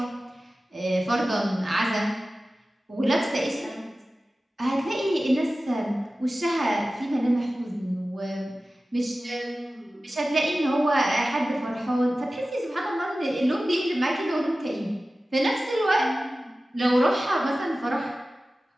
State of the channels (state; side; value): normal; both; correlation 0.96